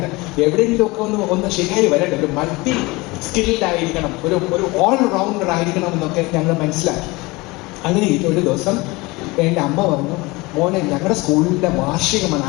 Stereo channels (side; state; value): right; quieter; 23.2 dB